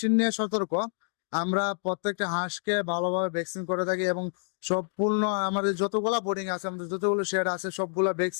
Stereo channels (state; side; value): silent; right; digital silence